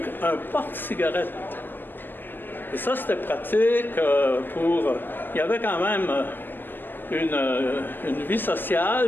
un porte-cigarette. Et ça, c'était pratique pour... Il y avait quand même une vie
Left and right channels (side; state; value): right; late; 0.094 ms